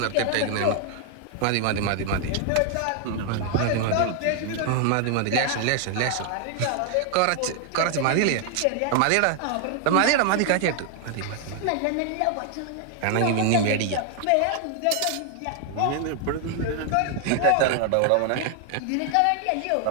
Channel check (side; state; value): both; different; correlation 0.00